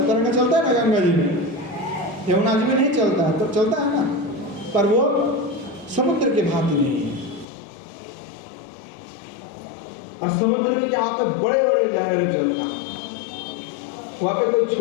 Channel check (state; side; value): drops out; right; at 7.5 s